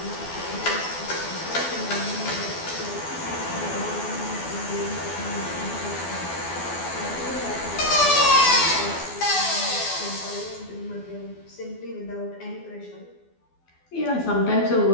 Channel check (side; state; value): right; late; 12 ms